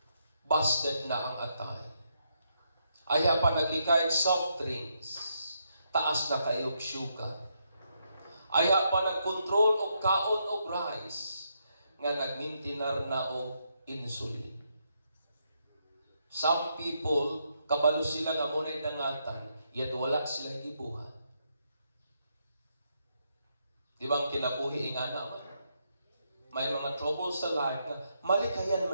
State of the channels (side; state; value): both; inverted; correlation -0.79